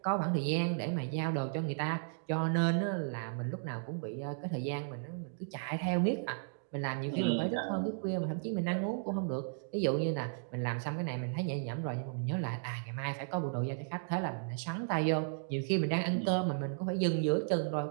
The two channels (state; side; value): silent; left; digital silence